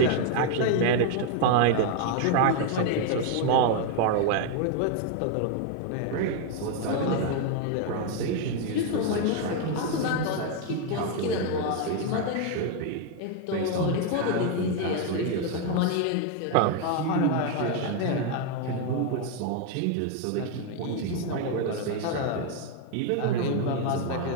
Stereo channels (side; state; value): both; different; correlation 0.01